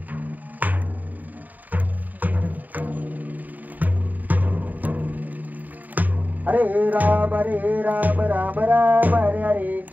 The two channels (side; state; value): left; late; 0.082 ms